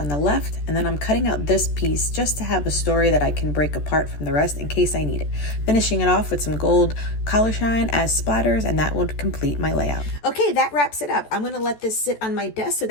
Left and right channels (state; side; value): late; right; 14 ms